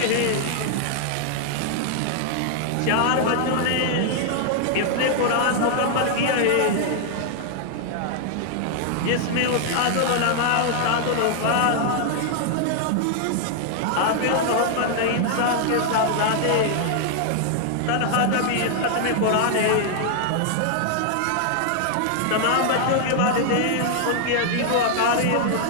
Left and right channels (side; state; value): both; different; correlation 0.00